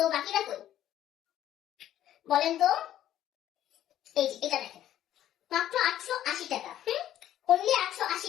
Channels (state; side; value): quieter; right; 12.1 dB